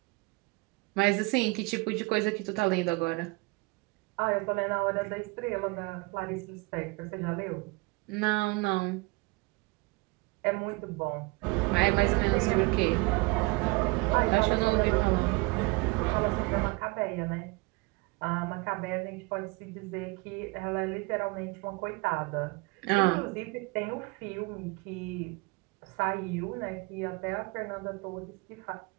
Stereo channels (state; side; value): quieter; left; 26.3 dB